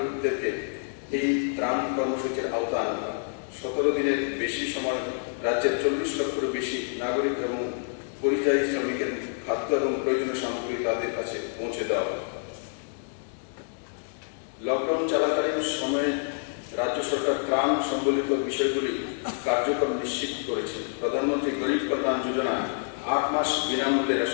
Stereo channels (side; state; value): right; silent; digital silence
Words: এই ত্রাণ কর্মসূচির আওতায় আনা হয়। 17 দিনের বেশি সময় রাজ্যের 40 লক্ষেরও বেশি নাগরিক এবং পরিযায়ী শ্রমিকের খাদ্য এবং প্রয়োজনীয় সামগ্রী তাদের কাছে পৌঁছে দেওয়া হয়। লকডাউন চলাকালীন সময়ে রাজ্য সরকার ত্রাণ সম্বলিত বিষয়গুলি কার্যক্রম নিশ্চিত করেছে। প্রধানমন্ত্রী গরিব কল্যাণ যোজনা 8 মাস বিনামূল্যে